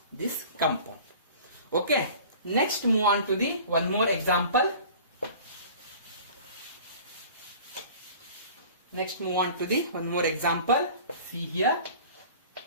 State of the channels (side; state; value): both; inverted; correlation -0.44